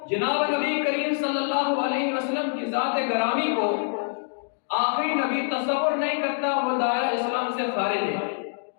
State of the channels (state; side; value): silent; right; digital silence